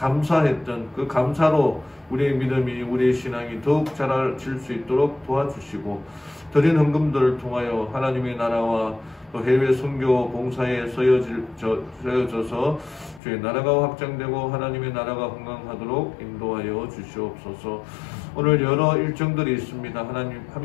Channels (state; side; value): drops out; right; at 13.2 s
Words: 그 감사로 우리의 믿음이 우리의 신앙이 더욱 자라질 수 있도록 도와주시고 드린 헌금들을 통하여 하나님의 나라와 또 해외 선교 봉사에 쓰여져서 주의 나라가 확장되고 하나님의 나라가 건강하도록 인도하여 주시옵소서. 오늘 여러 일정들이 있습니다. 하나님